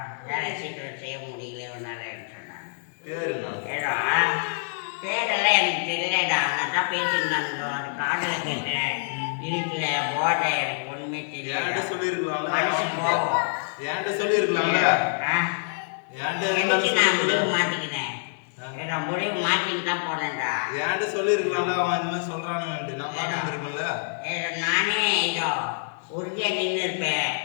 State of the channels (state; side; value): silent; right; digital silence